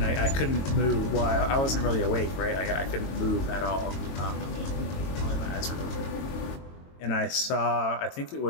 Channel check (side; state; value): right; late; 22 ms